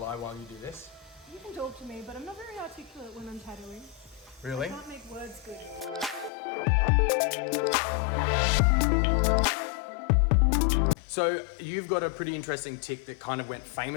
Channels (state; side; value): drops out; right; at 6.3 s